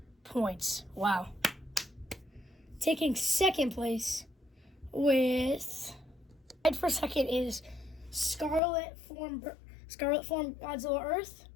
points. Wow. Taking second place with, tied for second is Scarlet Form Godzilla Earth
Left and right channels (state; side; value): drops out; right; at 8.6 s